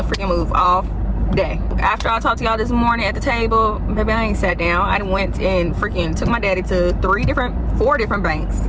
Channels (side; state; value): both; identical; correlation 1.00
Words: freaking move all day. After I talked to y'all this morning at the table, baby, I ain't sat down. I went and freaking took my daddy to 4 different banks.